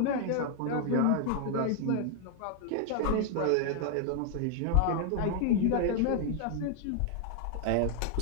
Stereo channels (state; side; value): different; both; correlation 0.00